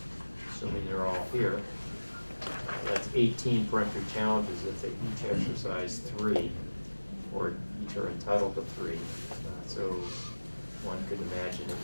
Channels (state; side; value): inverted; both; correlation -1.00